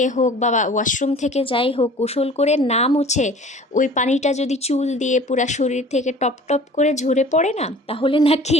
হোক বা ওয়াশরুম থেকে যাই হোক, গোসল করে না মুছে ওই পানিটা যদি চুল দিয়ে পুরা শরীর থেকে টপ টপ করে ঝরে পড়ে না, তাহলে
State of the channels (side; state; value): both; normal; correlation 0.46